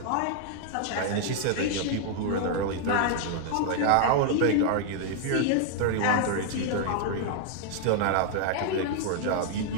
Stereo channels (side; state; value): both; different; correlation 0.00